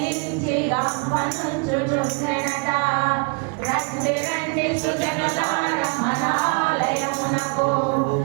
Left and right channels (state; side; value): quieter; left; 34.4 dB